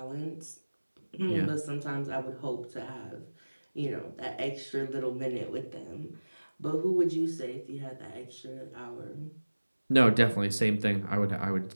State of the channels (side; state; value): both; inverted; correlation -1.00